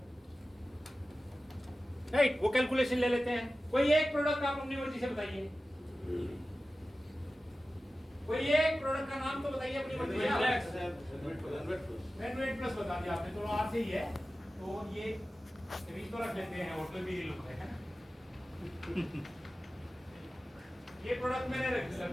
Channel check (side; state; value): both; normal; correlation 0.95